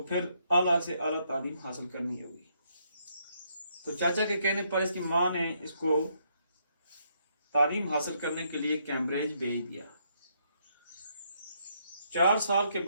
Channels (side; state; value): both; inverted; correlation -0.73